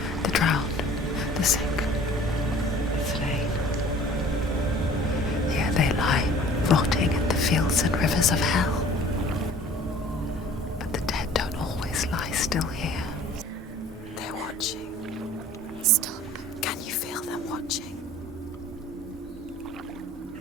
The drowned, the sick, the slain. Here they lie, rotting in the fields and rivers of hell. But the dead don't always lie still here. They're watching. Stop. Can you feel them watching?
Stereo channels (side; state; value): both; normal; correlation 0.49